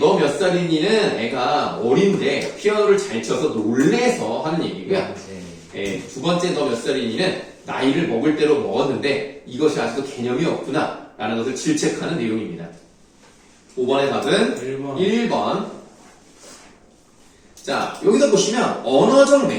몇 살이니는 애가 어린데 피아노를 잘 쳐서 놀래서 하는 얘기고요. 예, 두 번째 너 몇 살이니는 나이를 먹을 대로 먹었는데 이것이 아직도 개념이 없구나 라는 것을 질책하는 내용입니다. 5번의 답은 1번. 자, 여기서 보시면 언어적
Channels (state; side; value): identical; both; correlation 1.00